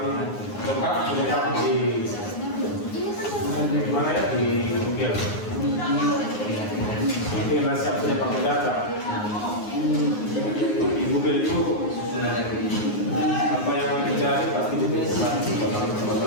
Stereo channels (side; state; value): right; late; 9.6 ms